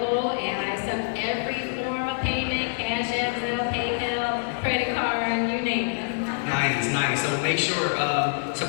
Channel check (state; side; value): silent; right; digital silence